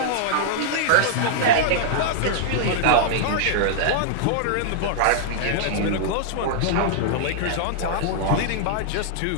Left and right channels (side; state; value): both; different; correlation -0.01